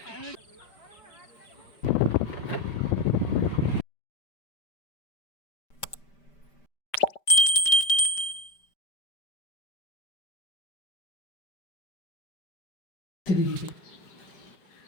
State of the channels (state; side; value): late; right; 5.1 ms